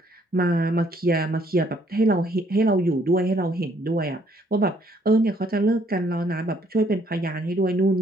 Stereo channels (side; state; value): both; normal; correlation 0.65